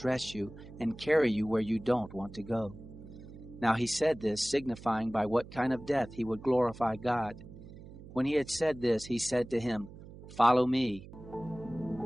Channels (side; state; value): right; noise; hum, 16 dB below the sound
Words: you and carry you where you don't want to go." Now he said this, signifying by what kind of death he would glorify God. When he had said this, he said to him, "Follow me."